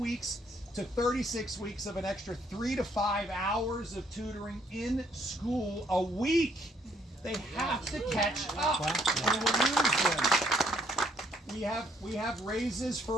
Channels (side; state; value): both; normal; correlation 0.68